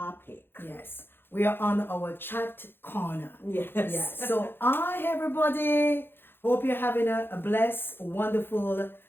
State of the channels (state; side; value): late; right; 0.10 ms